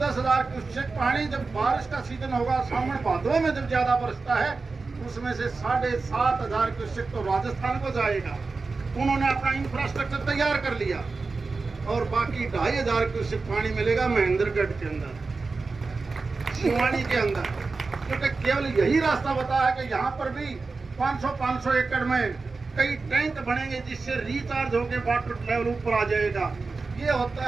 क्यूसेक पानी जब बारिश का सीजन होगा, सावन भादों में जब ज्यादा बरसता है, उसमें से 7,500 क्यूसेक तो राजस्थान को जाएगा। उन्होंने अपना इंफ्रास्ट्रक्चर तैयार कर लिया, और बाकी 2500 क्यूसेक पानी मिलेगा महेंद्रगढ़ के अंदर, शिवानी के अंदर, क्योंकि केवल यही रास्ता बताया है कि यहाँ पर भी 500 एकड़ में कई टैंक बनेंगे, जिससे रिचार्ज होकर वाटर लेवल ऊपर आ जाएगा। ये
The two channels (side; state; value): left; quieter; 4.1 dB